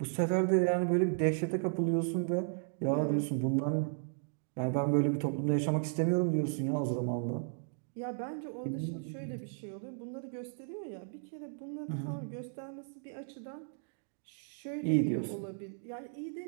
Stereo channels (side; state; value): left; silent; digital silence